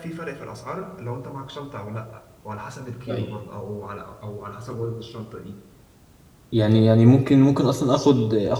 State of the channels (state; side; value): identical; both; correlation 1.00